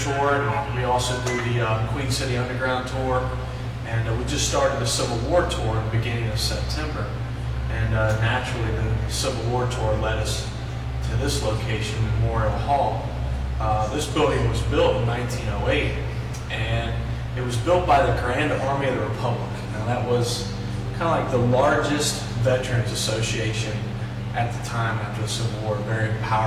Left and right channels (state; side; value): identical; both; correlation 1.00